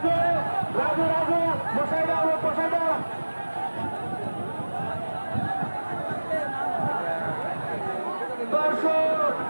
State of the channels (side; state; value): both; inverted; correlation -1.00